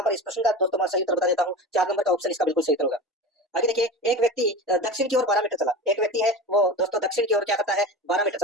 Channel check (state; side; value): normal; both; correlation 0.31